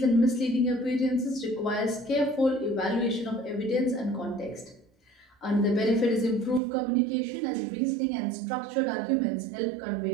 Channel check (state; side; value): drops out; left; at 6.6 s